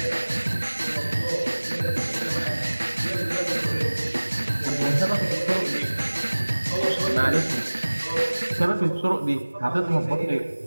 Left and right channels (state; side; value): inverted; both; correlation -1.00